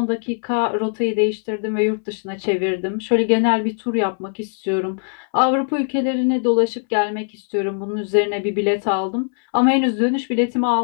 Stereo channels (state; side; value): silent; right; 65 dB below the other